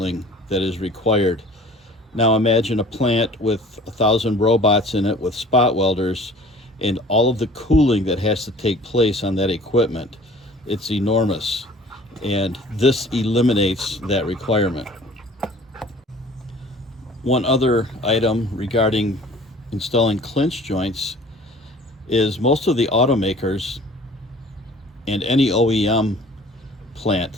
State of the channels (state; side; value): normal; both; correlation 0.48